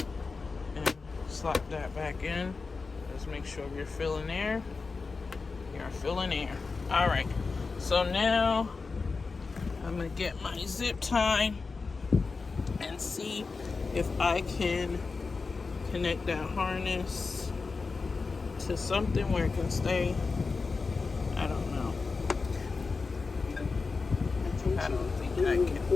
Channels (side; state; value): right; quieter; 4.3 dB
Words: And slap that back in. Just make sure you're filling air. You're filling air. All right, so now I'm gonna get my zip tie and see if I can connect that harness to something where it can stay. I don't know. I don't think I